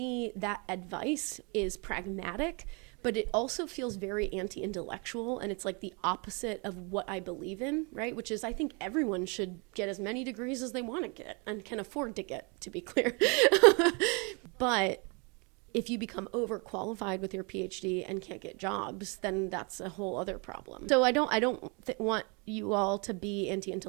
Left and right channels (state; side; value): quieter; left; 32.3 dB